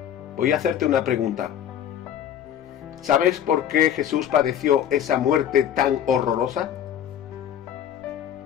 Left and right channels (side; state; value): right; quieter; 9.9 dB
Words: Voy a hacerte una pregunta. ¿Sabes por qué Jesús padeció esa muerte tan horrorosa?